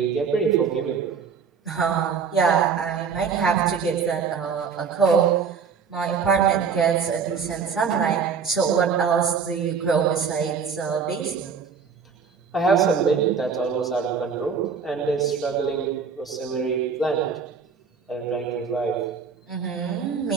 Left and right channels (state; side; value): quieter; left; 6.1 dB